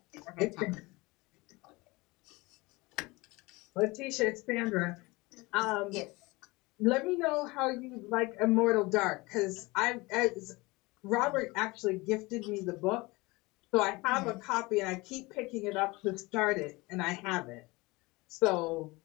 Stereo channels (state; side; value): quieter; right; 23.3 dB